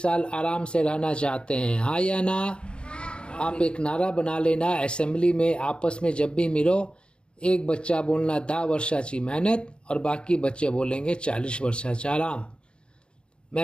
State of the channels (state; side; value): late; right; 0.054 ms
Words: साल आराम से रहना चाहते हैं, हाँ या ना? आप एक नारा बना लेना असेंबली में, आपस में जब भी मिलो, एक बच्चा बोलना 10 वर्षाची मेहनत और बाकी बच्चे बोलेंगे 40 वर्षाचा आराम।